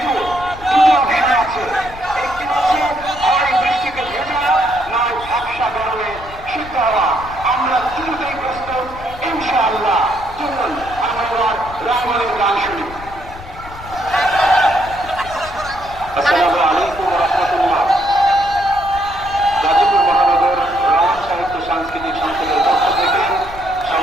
দুটো অপশন আছে। একটি হচ্ছে হয় বৃষ্টিকে ভেজা, নয় ঝাপসা গরমে সিদ্ধ হওয়া। আমরা দুটোই প্রস্তুত ইনশাআল্লাহ। চলুন আমরা এবার রাঙ্গলের গান শুনি। আসসালামু আলাইকুম ওয়া রাহমাতুল্লাহ। গাজীপুর মহানগর রমণ সাহিত্য সাংস্কৃতিক সংসদের পক্ষ থেকে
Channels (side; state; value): left; noise; rumble, 16 dB below the sound